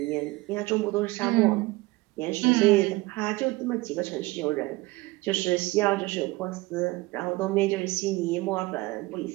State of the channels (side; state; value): left; quieter; 21.2 dB